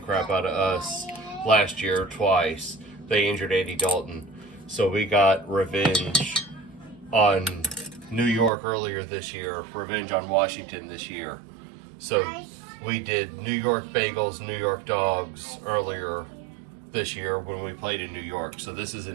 out of us last year twice. They injured Andy Dalton. So we got revenge on New York earlier this year, revenge on Washington this year. So we did New York Bagels, New York Dogs earlier this year when we played in New York. So this is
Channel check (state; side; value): drops out; left; at 8.5 s